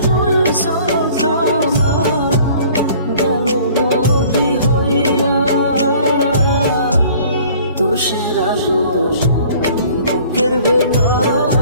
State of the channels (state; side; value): inverted; both; correlation -0.51